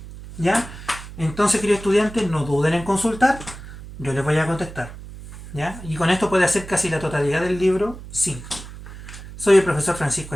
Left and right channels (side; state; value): right; noise; hum, 14 dB below the sound